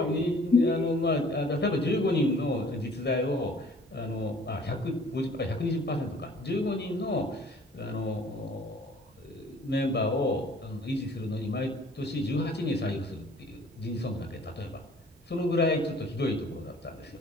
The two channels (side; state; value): both; normal; correlation 0.53